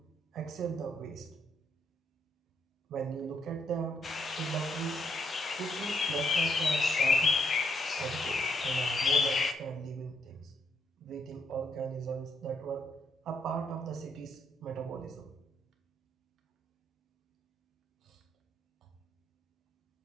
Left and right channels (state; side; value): normal; both; correlation 0.75